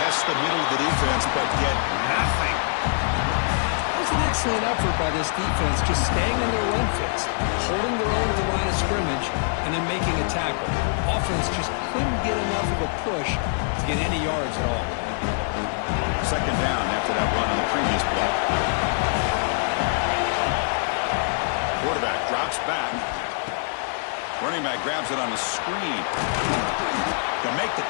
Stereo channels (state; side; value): silent; right; 62 dB below the other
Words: the middle of the defense, but get nothing. It was an excellent effort by this defense, just staying in their run fits, holding their own at the line of scrimmage, and then making a tackle. Offense just couldn't get enough of a push to get any yards at all. 2nd down after that run on the previous play. Quarterback drops back. Running back grabs it on the screen. They'll make the